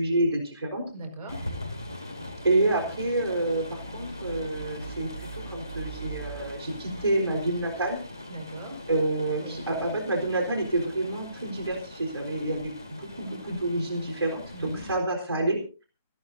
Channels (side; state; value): both; inverted; correlation -0.70